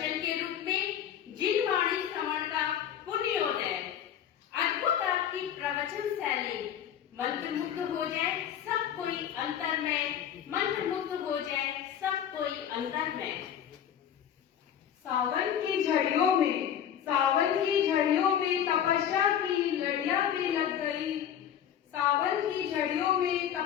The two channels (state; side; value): quieter; right; 9.5 dB